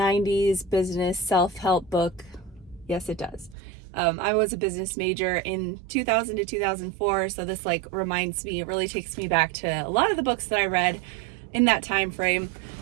business self-help book? Yes, it does. I was a business major in 2000 to 2004, so this reminds me, it really takes me back to a lot of the books that I read in that time frame.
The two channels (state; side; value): drops out; left; at 3.6 s